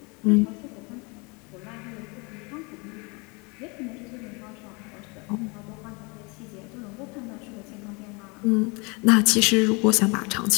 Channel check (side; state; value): right; quieter; 29.7 dB